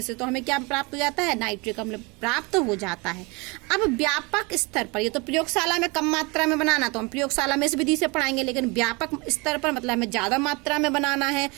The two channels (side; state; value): left; quieter; 27.8 dB